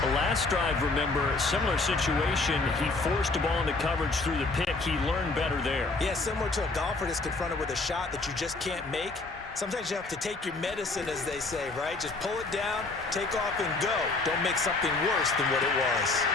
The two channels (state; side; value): quieter; right; 3.5 dB